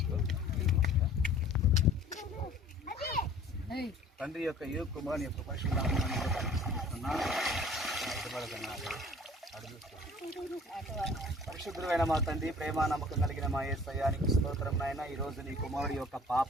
తండ్రి యొక్క కుమారుని యొక్క పరిశుద్ధులైన మా తండ్రి, ప్రేమ నమ్మకం కలిగిన మా యేసయ్యానికి స్తోత్రం నాయన. ఈరోజు నీ కుమారుడి యొక్క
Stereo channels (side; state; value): both; normal; correlation 0.50